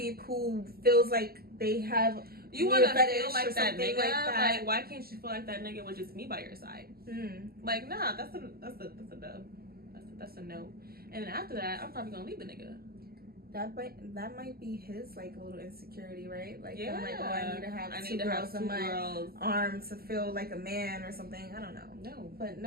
who feels like they have you want to feel like that nigga? Like, why can't you feel like that nigga with just me by your side? Like, nah, that's a dub. That's a no. And then after that, I'm probably gonna leave the nigga. That might be his like a little insecurity, right? Like, yeah. Like, oh, I need to have two girls in my arms to feel like a man or something. I don't know. No, but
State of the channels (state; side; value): late; left; 0.45 ms